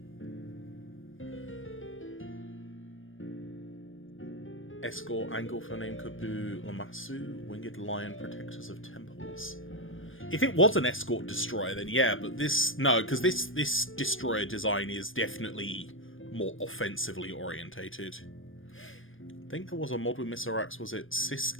Escort, angle for name Kubu Lamasu, winged lion protectors of temples. If it was an escort destroyer, then yeah, but no, because this destroyer design is definitely more offensively orientated. I think there was a mod with Miserax, was it Cis?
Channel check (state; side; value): late; right; 0.59 ms